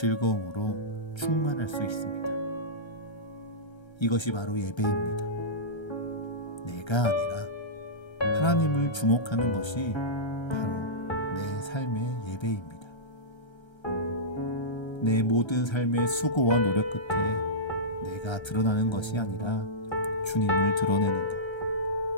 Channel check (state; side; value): late; right; 1.3 ms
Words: 충만할 수 있습니다. 이것이 바로 예배입니다. 내가 아니라 하나님을 주목하는 것이 바로 내 삶의 예배입니다. 내 모든 삶의 수고와 노력 끝에 내가 드러나는 것이 아니라 주님을 드러내는 것.